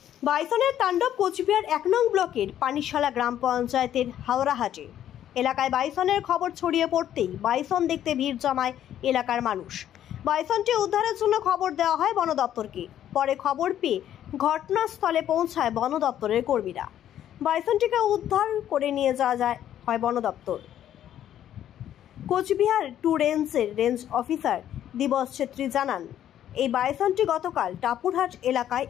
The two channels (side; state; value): right; quieter; 11.0 dB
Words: বাইসনের তাণ্ডব কোচবিহার 1 নং ব্লকের পানিশালা গ্রাম পঞ্চায়েতের হাওড়াহাটে এলাকায় বাইসনের খবর ছড়িয়ে পড়তেই বাইসন দেখতে ভিড় জমায় এলাকার মানুষ। বাইসনটি উদ্ধারের জন্য খবর দেওয়া হয় বন দপ্তরকে। পরে খবর পেয়ে ঘটনাস্থলে পৌঁছায় বন দপ্তরের কর্মীরা। বাইসনটিকে উদ্ধার করে নিয়ে যাওয়া হয় বন দপ্তর। কোচবিহার 2 রেঞ্জের রেঞ্জ অফিসার দিবস ছেত্রী জানান, এই বাইসনটি গতকাল টাপুরহাট এলাকায়